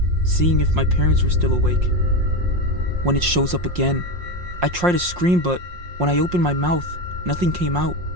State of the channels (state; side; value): late; left; 5.6 ms